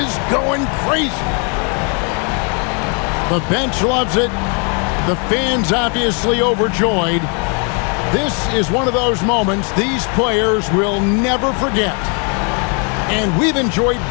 going crazy. The bench loves it. The fans obviously overjoyed. This is one of those moments these players will never forget. And we've enjoyed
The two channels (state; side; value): quieter; right; 36.1 dB